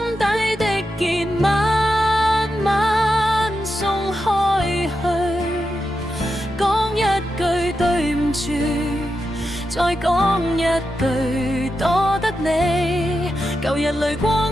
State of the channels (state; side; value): normal; both; correlation 0.88